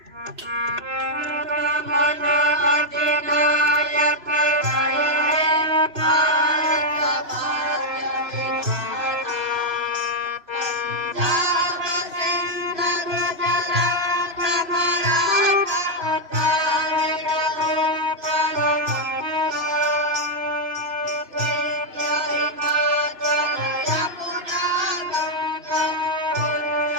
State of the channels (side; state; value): left; late; 3.0 ms